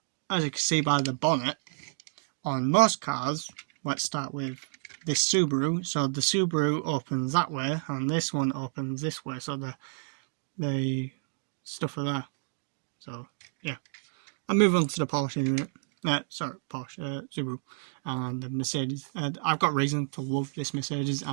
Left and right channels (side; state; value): left; silent; digital silence